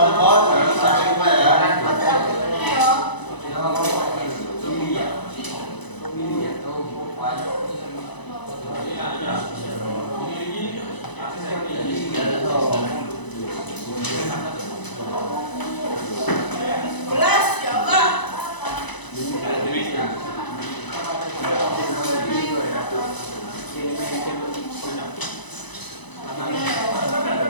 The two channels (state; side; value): late; right; 1.0 ms